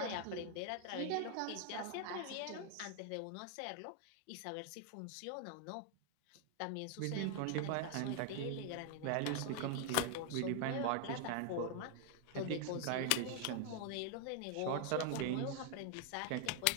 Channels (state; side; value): different; both; correlation 0.00